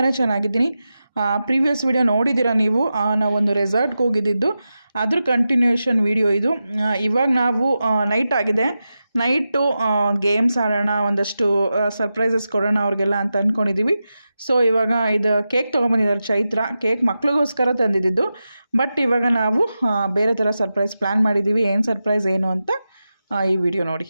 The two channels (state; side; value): inverted; both; correlation -0.91